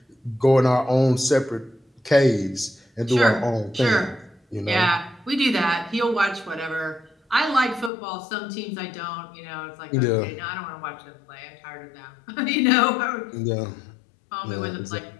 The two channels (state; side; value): drops out; right; at 7.9 s